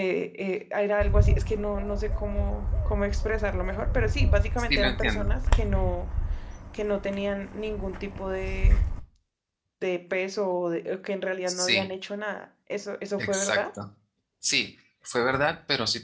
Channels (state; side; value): identical; both; correlation 1.00